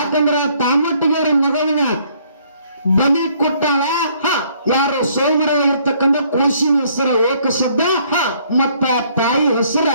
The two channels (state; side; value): inverted; both; correlation -0.64